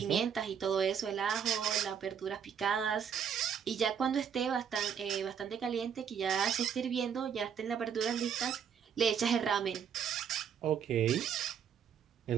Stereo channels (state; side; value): quieter; left; 7.8 dB